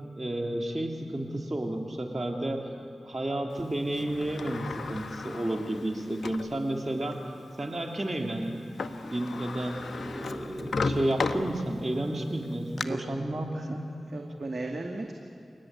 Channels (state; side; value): normal; both; correlation 0.94